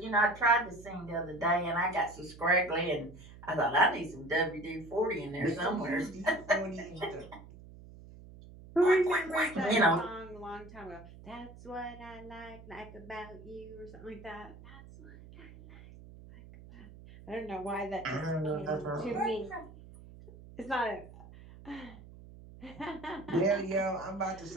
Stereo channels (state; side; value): noise; right; hum, 18 dB below the sound